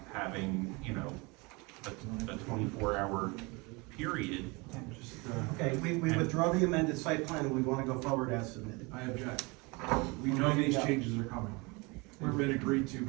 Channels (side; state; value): left; quieter; 27.0 dB